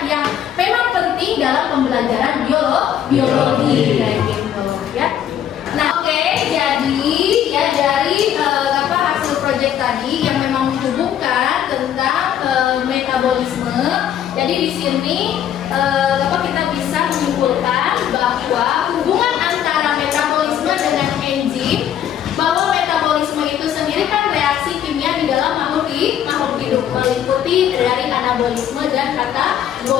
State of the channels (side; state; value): right; quieter; 10.0 dB